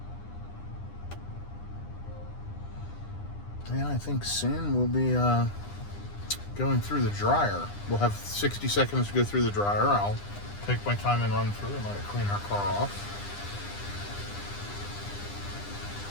And I think soon we'll be going through the dryer. We'll have 60 seconds to go through the dryer. I'll take my time and run through and let it clean our car off.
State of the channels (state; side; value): late; right; 9.9 ms